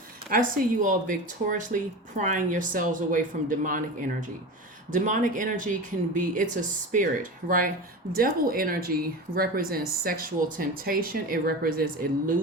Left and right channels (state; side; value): normal; both; correlation 0.28